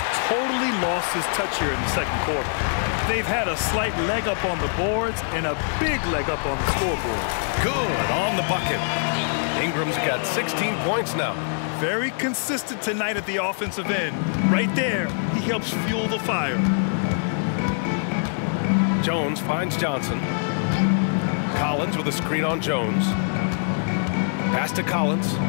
totally lost his touch here in the second quarter. They've had a slight leg up on the boards and a big leg up on the scoreboard. Good on the bucket. Ingram's got 16 points now. Very consistent tonight at the offensive end. Right there, he helps fuel the fire. Jones finds Johnson. Collins with a screen on Jones. Pass to Collins.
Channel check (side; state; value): right; silent; digital silence